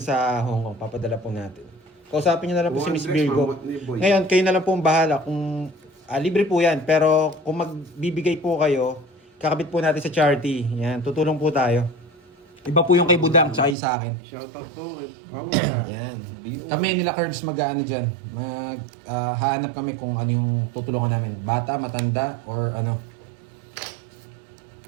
Hong Kong. Papadala po natin. Kausapin nyo na lang po si Miss Virgo. Ngayon, kayo na lang po ang bahala kung libre po yan. Pero kung magbibigay po kayo, kakabit po natin sa charity. Yan, tutulong po tayo. Iba po yung kay Budang tsaka yung sa akin. Shoutout po. Yan. Kami nila Curbs mag-ano dyan. Hahanap kami kung ano yung tutulungan namin. Bata, matanda, or ano.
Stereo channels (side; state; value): left; drops out; at 13.8 s